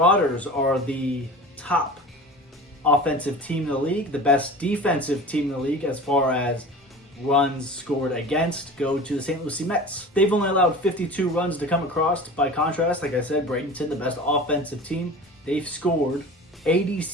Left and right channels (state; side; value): normal; both; correlation 0.36